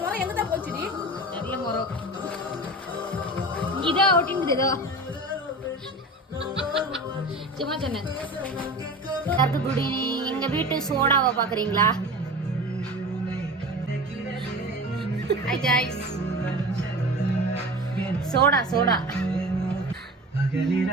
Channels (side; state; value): both; normal; correlation 0.33